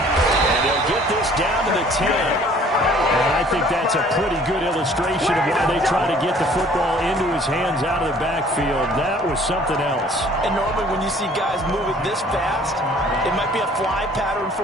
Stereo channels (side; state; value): both; normal; correlation 0.54